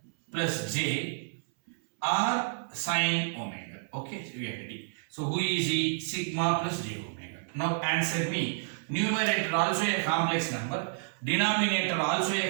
plus j R sin omega. Okay, so we are ready. So who is the sigma plus j omega? Now answer me. Numerator also a complex number, denominator also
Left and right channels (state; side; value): silent; left; 58 dB below the other